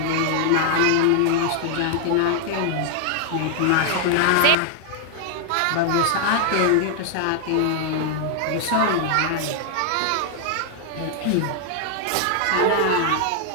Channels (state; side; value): different; both; correlation 0.00